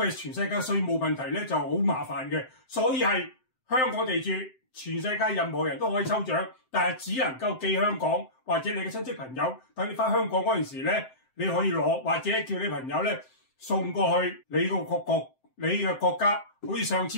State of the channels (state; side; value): late; right; 7.7 ms